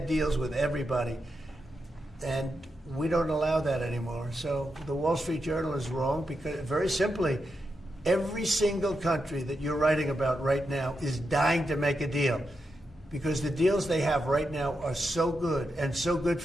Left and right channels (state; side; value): normal; both; correlation 0.86